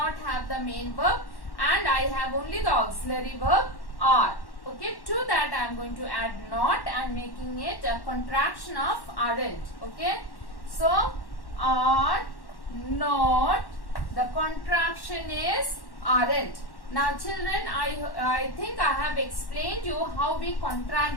have the main verb and I have only the auxiliary verb are. Okay, to that I am going to add not and making it a contraction of aren't. Okay, so are not, the contraction is aren't. Now children, I think I have explained you how we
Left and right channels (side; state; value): right; late; 1.1 ms